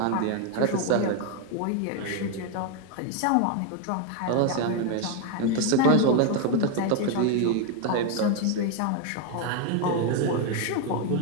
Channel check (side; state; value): both; different; correlation 0.01